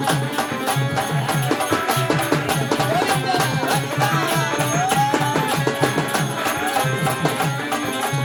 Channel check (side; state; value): both; identical; correlation 1.00